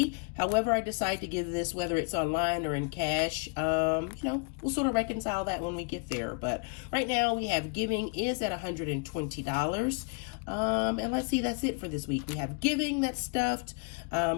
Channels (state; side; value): quieter; right; 33.4 dB